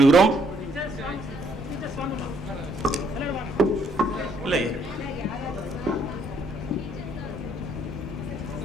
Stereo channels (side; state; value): both; normal; correlation 0.68